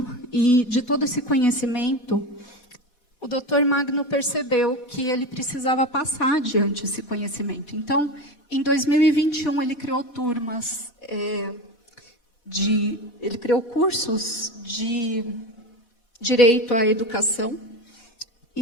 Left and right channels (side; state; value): right; late; 4.1 ms